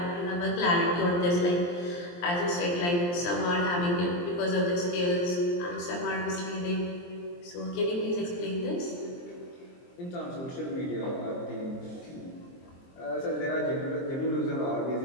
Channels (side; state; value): right; late; 23 ms